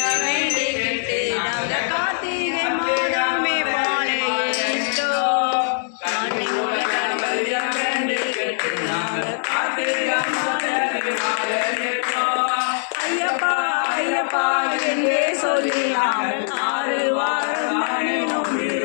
வேண்டிக்கிட்டு நாங்க கார்த்திகை மாதமே பாளையிட்டோ சாந்தி மூல கணபதியா வேண்டிக்கிட்டு நாங்க கார்த்திகை மாதமே ஐயப்பா ஐயப்பா என்றே சொல்லி நாங்கள் 6 வாரம் நானினோம்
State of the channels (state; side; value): silent; right; 64 dB below the other